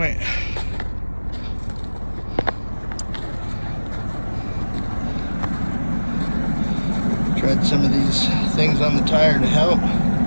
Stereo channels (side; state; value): both; inverted; correlation -1.00